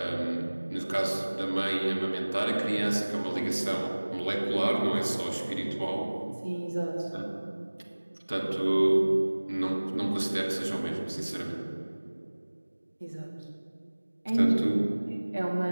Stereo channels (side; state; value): both; inverted; correlation -1.00